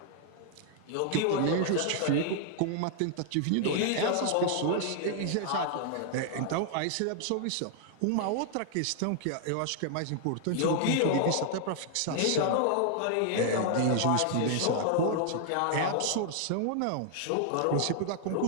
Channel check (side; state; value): both; different; correlation 0.00